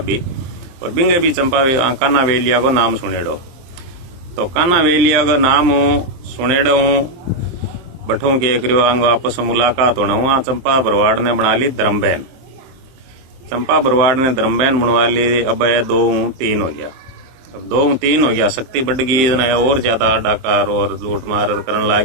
और बिंगे भी चंपा काना वेलिया को नाम सुनेड़ो। तो काना वेलिया को नाम सुनेड़ो बठों के करियो अंग आपस मुलाकात होना हुआ। चंपा भरवाड़ ने बना ली धर्मबहन, चंपा भरवाड़ ने धर्मबहन बनवा ली। अब 2-3 हो गया, अब 2-3 हो गया, शक्ति बढ़ गई और ज्यादा डाकार और लूट मार करने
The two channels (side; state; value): left; late; 23 ms